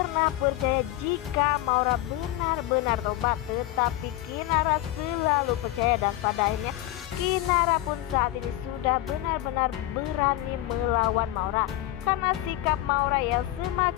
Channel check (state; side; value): quieter; right; 15.5 dB